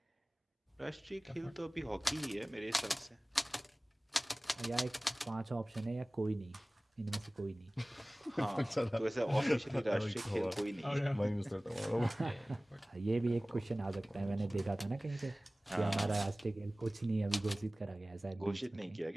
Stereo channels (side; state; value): both; normal; correlation 0.98